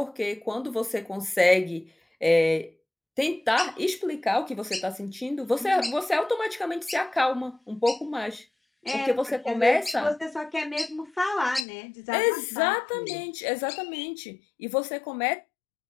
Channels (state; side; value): drops out; right; at 11.7 s